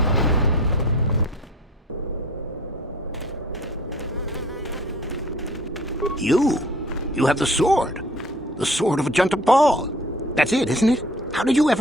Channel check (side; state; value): both; normal; correlation 0.48